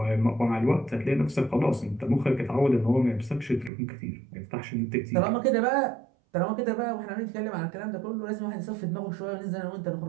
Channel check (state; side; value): drops out; left; at 3.7 s